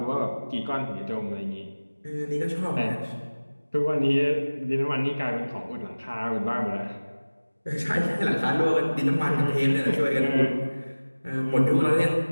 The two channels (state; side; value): inverted; both; correlation -1.00